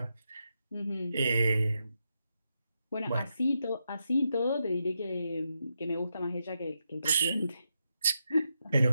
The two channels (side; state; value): both; inverted; correlation -0.84